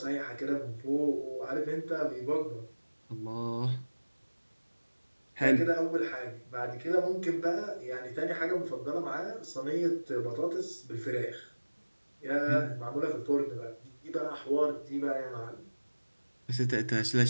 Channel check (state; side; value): inverted; both; correlation -1.00